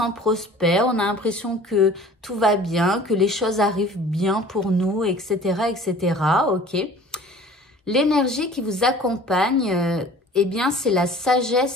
prospère, on a l'impression que tout va bien, que les choses arrivent bien pour nous, etc., etc. Ok. L'énergie qui vous accompagne, eh bien, c'est la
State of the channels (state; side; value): normal; both; correlation 0.46